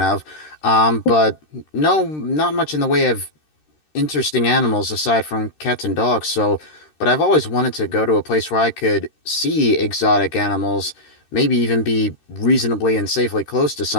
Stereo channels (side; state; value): right; late; 13 ms